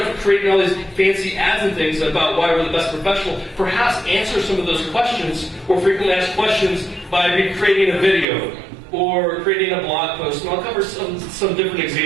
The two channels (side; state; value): left; drops out; at 8.2 s